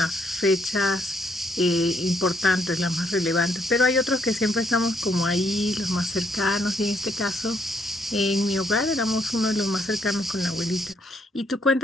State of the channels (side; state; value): both; normal; correlation 0.71